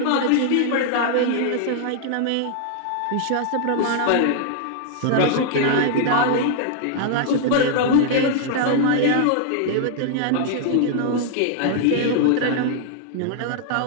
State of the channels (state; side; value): different; both; correlation 0.00